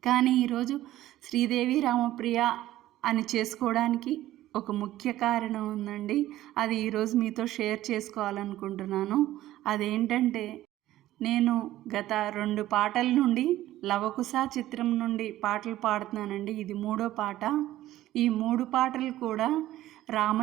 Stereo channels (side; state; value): left; quieter; 14.6 dB